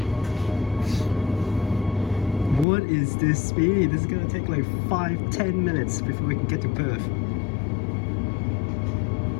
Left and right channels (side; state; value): right; drops out; at 2.7 s